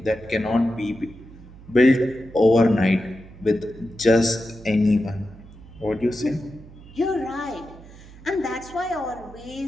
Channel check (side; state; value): right; noise; hum, 19 dB below the sound